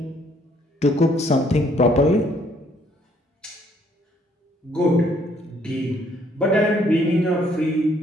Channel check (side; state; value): both; normal; correlation 0.65